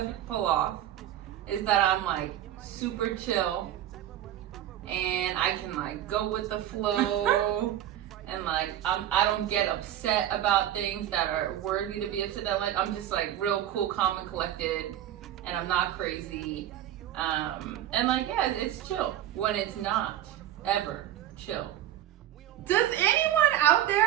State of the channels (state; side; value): quieter; left; 12.0 dB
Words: off is that I'm like super chill and I can like go with the flow and like I don't get upset about things that are worthy to be upset at. Like I'm just like real cool, calm and collected and I'm not crazy. And like yeah, it's chill when it's not ever chill. Does anyone out